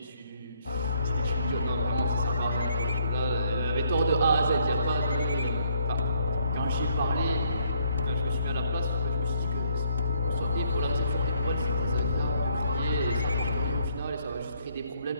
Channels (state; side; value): inverted; both; correlation -0.68